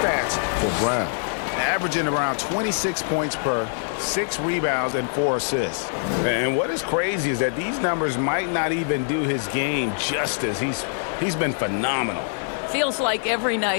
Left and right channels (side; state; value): right; silent; digital silence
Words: for Brown. averaging around 26 points per, 6 rebounds, and 4 assists. And what is crazy is that these numbers might not even do his game justice. He's been phenomenal. Feels like every